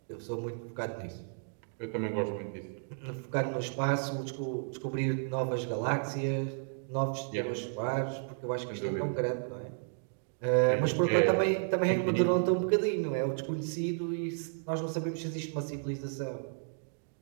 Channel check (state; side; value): silent; left; digital silence